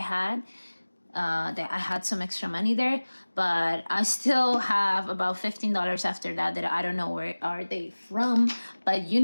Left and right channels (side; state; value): both; inverted; correlation -1.00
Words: That I had some extra money there, but I still have about $15 after that I don't know where are they from. But you